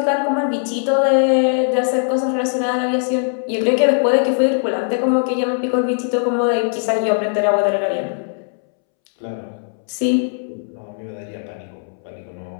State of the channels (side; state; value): right; silent; 66 dB below the other